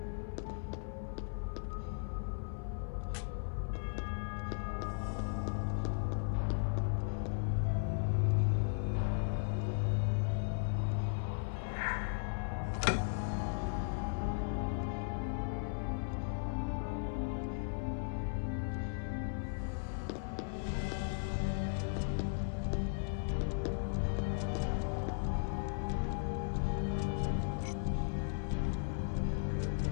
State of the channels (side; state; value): right; silent; 53 dB below the other